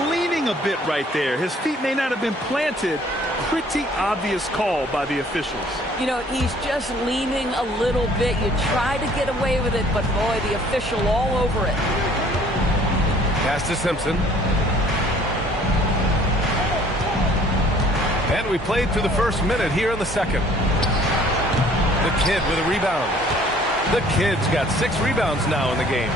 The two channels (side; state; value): both; normal; correlation 0.56